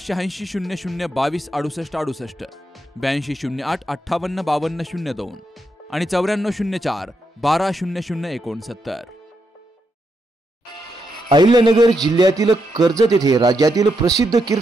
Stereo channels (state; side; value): normal; both; correlation 0.82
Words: 8208585202 आणि 9404120069। अहिल्यानगर जिल्ह्यातील कर्जत येथे राज्यातील प्रसिद्ध